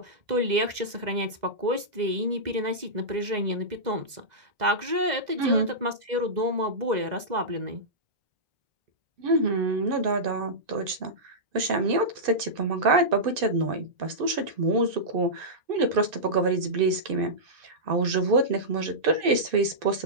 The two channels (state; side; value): late; left; 2.0 ms